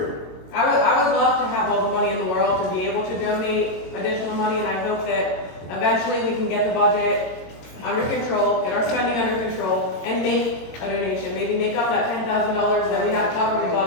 I would love to have all the money in the world to be able to donate additional money, and I hope that eventually we can get the budget under control, get our spending under control, and make a donation. Maybe make up that $10,000 that we have to cover the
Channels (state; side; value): late; right; 22 ms